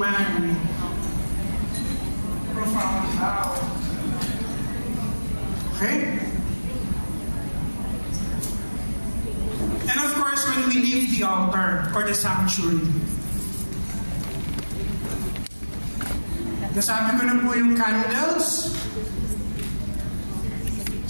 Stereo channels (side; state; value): both; inverted; correlation -1.00